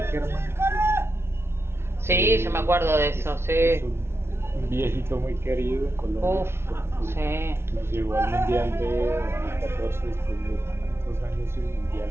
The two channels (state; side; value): late; left; 0.12 ms